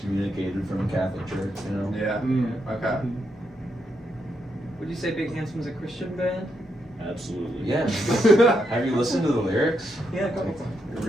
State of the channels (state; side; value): normal; both; correlation 0.80